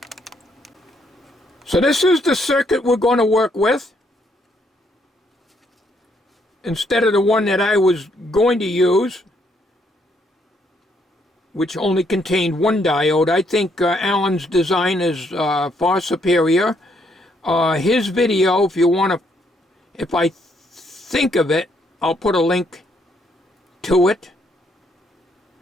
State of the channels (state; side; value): normal; both; correlation 0.72